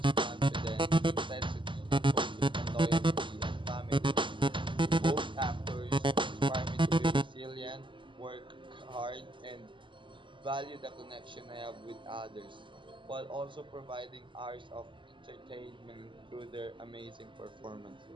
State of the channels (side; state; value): left; late; 0.24 ms